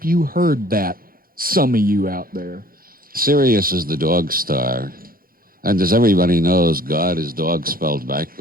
you heard that. Some of you out there. Sirius is the dog star. And as everybody knows, God is dog spelled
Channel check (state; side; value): late; left; 0.42 ms